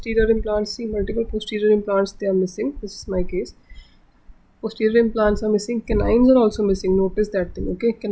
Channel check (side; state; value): both; identical; correlation 1.00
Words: implants, they are missing. This is my case. Posterior implants are missing, canines are also missing. Notice that thing, okay?